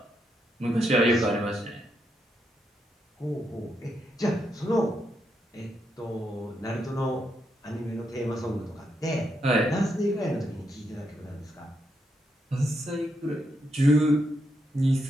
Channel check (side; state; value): both; normal; correlation 0.81